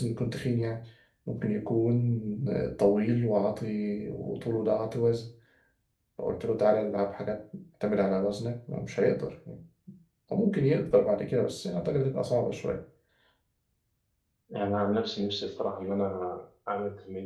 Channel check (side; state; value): both; identical; correlation 1.00